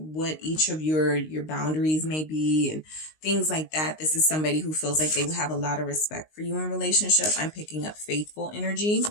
each of your boundaries may be and things like that. This is somebody who feels like they will have a lot of respect for you in relationship. I'm picking up faithful energy.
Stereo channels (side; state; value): right; late; 19 ms